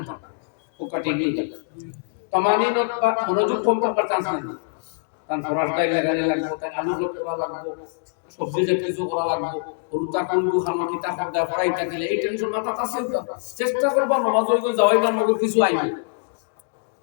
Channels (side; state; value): right; silent; digital silence